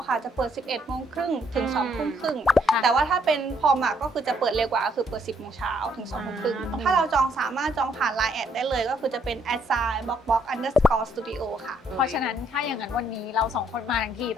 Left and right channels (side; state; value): both; normal; correlation 0.69